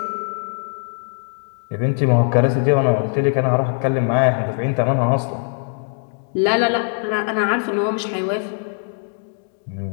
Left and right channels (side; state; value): right; silent; 65 dB below the other